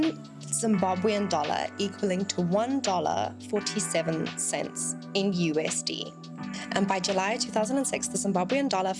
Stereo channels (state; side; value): identical; both; correlation 1.00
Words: Zimbabwean dollar equaling to $1.47 in USD. And by July 2006, the Zimbabwean dollar